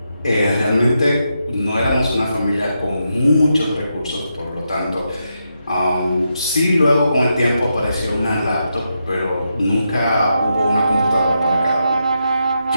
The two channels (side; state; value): both; inverted; correlation -0.84